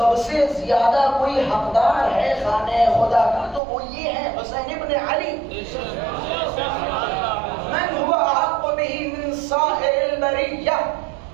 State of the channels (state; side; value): drops out; left; at 3.6 s